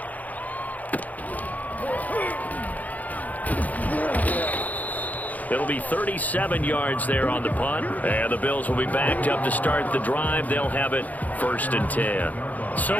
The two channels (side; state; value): right; late; 0.078 ms